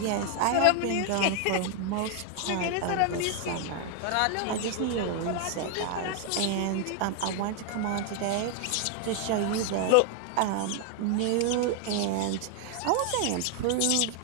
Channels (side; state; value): both; different; correlation 0.00